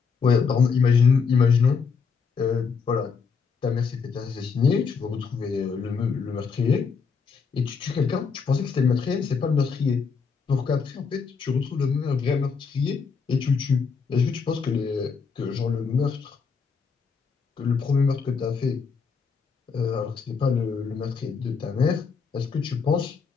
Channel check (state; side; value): quieter; right; 5.5 dB